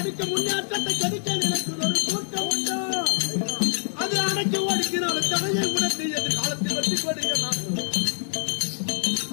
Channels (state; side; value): silent; right; digital silence